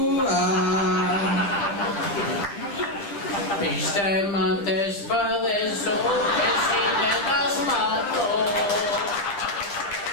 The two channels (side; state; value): right; late; 10 ms